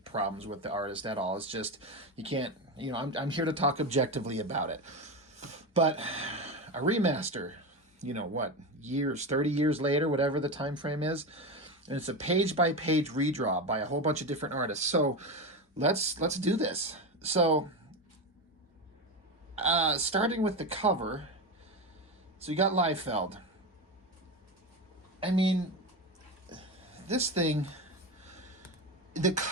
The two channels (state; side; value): normal; both; correlation 0.18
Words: with the artist at all. It's just, you can't, I'm here to talk objectively about it. But a remaster, what, 30 years later, whatever the time frame is, and it's a page-by-page redraw by a whole bunch of different artists. So let's do this. So starting with the cover, so you got Liefeld. I mean, this thing, the